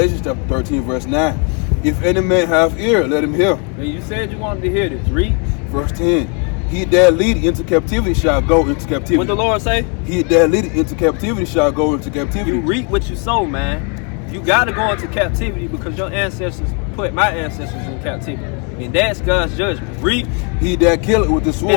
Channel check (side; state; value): right; quieter; 37.5 dB